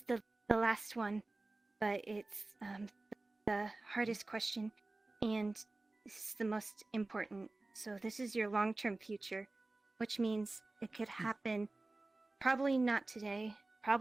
the last one, but it's the hardest question, and this is the most important. So this is your long-term future, which means it could happen probably not today,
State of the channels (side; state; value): left; quieter; 3.1 dB